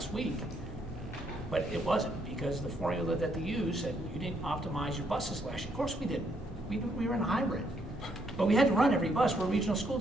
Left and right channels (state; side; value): normal; both; correlation 0.73